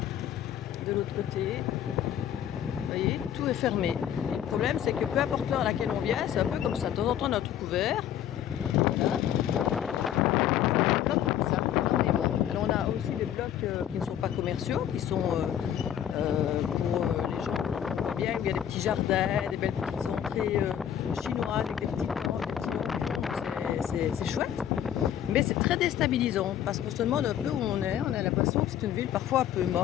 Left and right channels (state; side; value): quieter; right; 10.2 dB